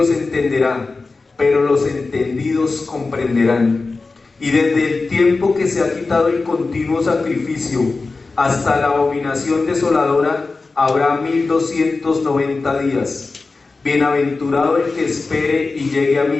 entenderá, pero los entendidos comprenderán. Y desde el tiempo que se ha quitado el continuo sacrificio hasta la abominación desoladora habrá 1290 días. Bienaventurado el que espere y llegue a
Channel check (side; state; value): right; quieter; 3.8 dB